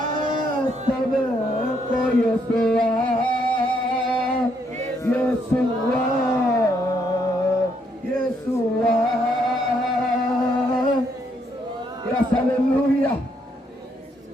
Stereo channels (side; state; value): both; normal; correlation 0.73